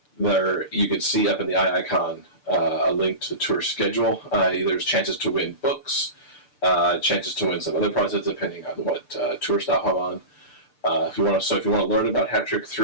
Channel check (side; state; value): right; late; 6.8 ms